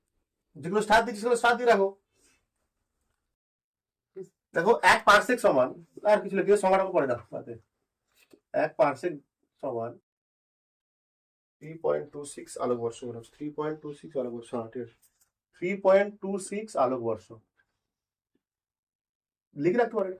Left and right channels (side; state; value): both; identical; correlation 1.00